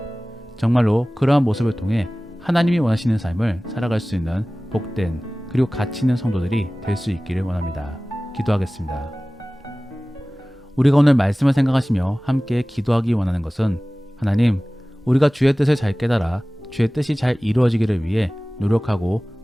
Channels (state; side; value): normal; both; correlation 0.98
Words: 정말로 그러한 모습을 통해 하나님이 원하시는 삶을 살아갈 수 있는 복된 그리고 가치 있는 성도들이 될 수 있기를 원합니다. 기도하겠습니다. 우리가 오늘 말씀을 생각하시며 함께 기도하기 원하는 것은 하나님, 우리가 주의 뜻을 잘 깨달아 주의 뜻이 잘 이루어지기를 위해 노력하고